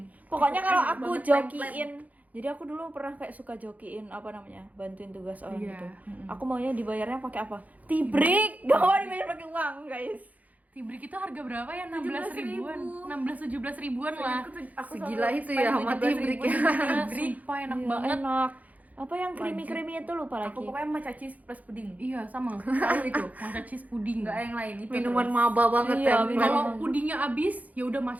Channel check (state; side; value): late; left; 0.076 ms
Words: Pokoknya kalau Enak aku banget, jokiin, jadi aku dulu pernah kayak suka jokiin apa namanya, bantuin tugas orang Iya. gitu. Aku maunya dibayarnya pakai apa? Tibrik. Gak mau dibayar pakai uang, guys. Tibrik itu harga berapa ya? 16 ribuan. 16-17 ribuan lah. Aku Segila selalu itu ya spend sama 17.000 tibrik ya. Sumpah enak Iya, banget. enak. Apa yang creamy itu lupa lagi. Aku pokoknya matcha cheese plus pudding. Iya, sama. Selalu itu. Matcha cheese puding. Enggak ada yang lain itu. Minuman terus. maba banget Iya, ya. minuman. Kalau pudingnya habis, ya udah